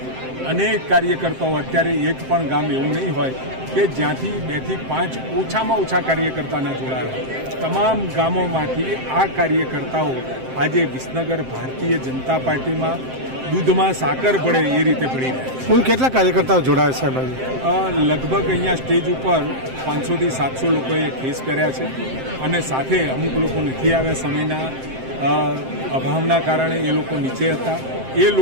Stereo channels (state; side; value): late; left; 7.7 ms